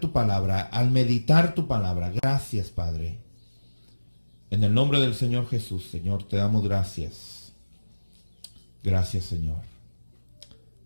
tu palabra, al meditar tu palabra. Gracias, Padre. En el nombre del Señor Jesús, Señor, te damos gracias. Gracias, Señor.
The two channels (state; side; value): inverted; both; correlation -1.00